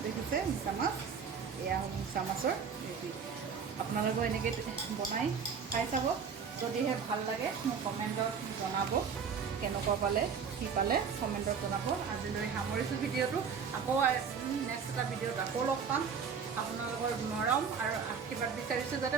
দেখিছে মিছা মাছ, এয়া মিছা মাছৰ ৰেডি। আপোনালোকেও এনেকৈ বনাই খাই চাব। যদিহে ভাল লাগে মোক কমেণ্টত জনাব, কেনেকুৱা পালে, কি পালে কমেণ্টত জনাব। আজিলৈ সামৰিছোঁ ভিডিঅ'টো। আকৌ নেক্সট এটা ভিডিঅ'ত আকৌ লগ পাম। আপোনালোকৰ মৰম আৰু আশীৰ্বাদ বিচাৰিছোঁ যাতে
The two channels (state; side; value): quieter; left; 6.3 dB